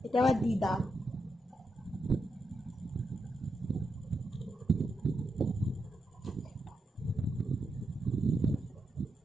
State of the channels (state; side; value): normal; both; correlation 0.85